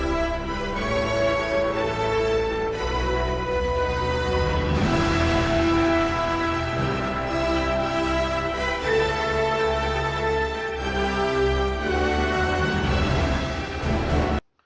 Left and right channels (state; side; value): identical; both; correlation 1.00